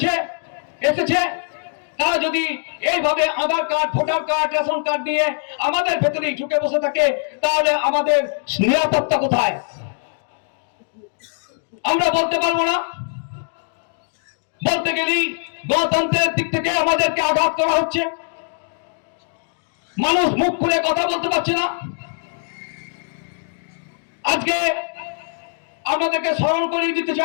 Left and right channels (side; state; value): right; silent; digital silence